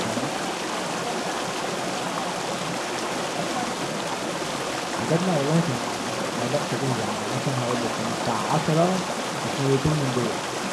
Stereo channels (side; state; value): both; identical; correlation 1.00